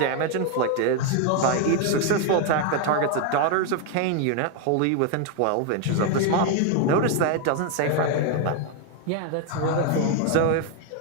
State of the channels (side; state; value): both; different; correlation 0.01